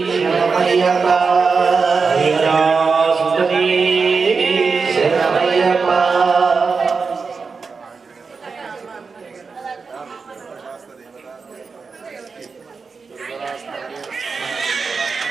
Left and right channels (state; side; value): quieter; left; 4.9 dB